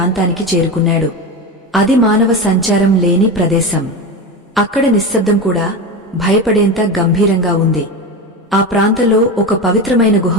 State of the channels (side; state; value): both; normal; correlation 0.22